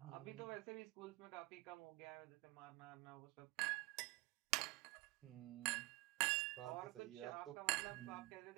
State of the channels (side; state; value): left; quieter; 22.4 dB